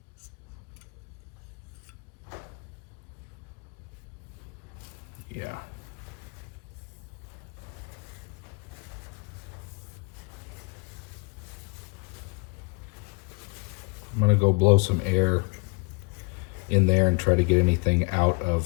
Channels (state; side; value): quieter; right; 30.8 dB